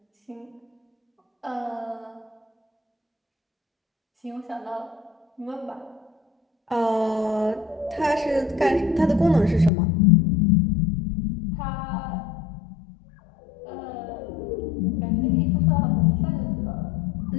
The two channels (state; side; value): drops out; right; at 9.7 s